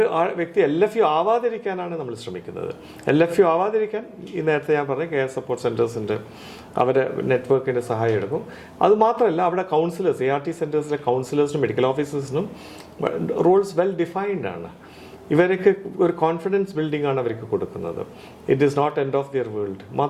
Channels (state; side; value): identical; both; correlation 1.00